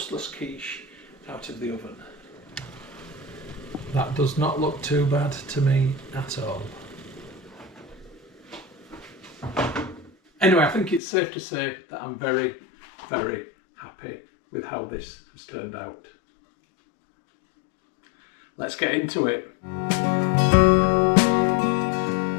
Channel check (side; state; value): right; drops out; at 11.0 s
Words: quiche out of the oven. That does not look too bad to me at all. Anyway, I think it's safe to say that I'm very, very happy with how this has turned out. Let's get into it.